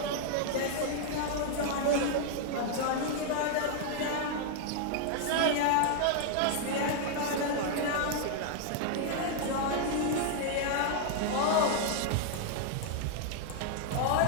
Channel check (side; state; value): both; different; correlation 0.00